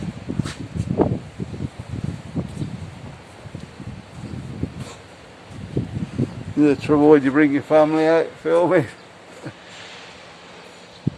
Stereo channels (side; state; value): both; identical; correlation 1.00